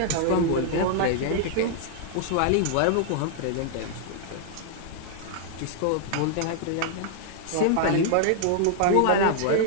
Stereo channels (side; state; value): both; different; correlation -0.01